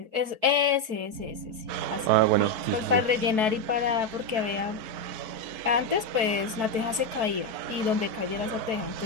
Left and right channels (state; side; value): late; left; 4.6 ms